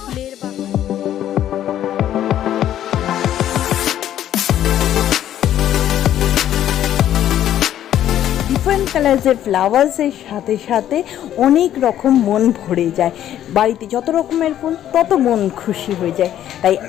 বাগান। ডিফারেন্ট কালার্সের ফ্লাওয়ার্সের সাথে সাথে অনেক রকম মন ভরে যায়। বাড়িতে যত রকমের ফুল তত মন খুশি হয়ে যায়। তাই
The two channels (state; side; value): quieter; right; 11.5 dB